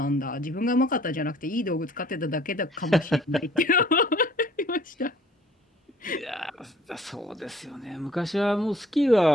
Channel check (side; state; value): both; normal; correlation 0.56